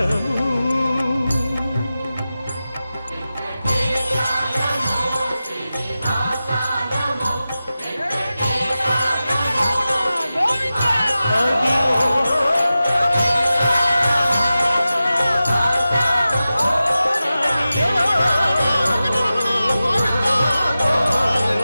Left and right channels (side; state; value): both; inverted; correlation -0.94